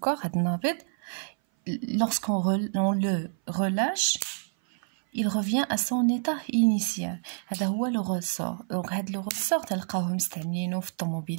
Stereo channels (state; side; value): silent; left; 58 dB below the other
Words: هاد النابض. Lorsqu'on le relâche, il revient à son état initial. هذا هو لو ريسور. دونك هاد لو ريسور تلقاوه مستعملينه في